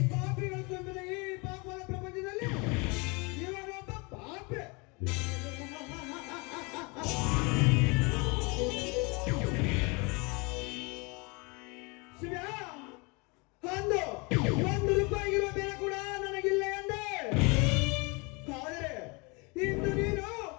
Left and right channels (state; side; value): quieter; right; 29.1 dB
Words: ಪಾಪಿಗಳ ತುಂಬಿದ ಈ ಪಾಪದ ಪ್ರಪಂಚದಲ್ಲಿ ಇವನೊಬ್ಬ ಪಾಪೆ. ಶಿವ, ಅಂದು 1 ರೂಪಾಯಿಗಿರುವ ಬೆಲೆ ಕೂಡ ನನಗಿಲ್ಲ ಎಂದೆ. ಆದರೆ ಇಂದು ನೀನು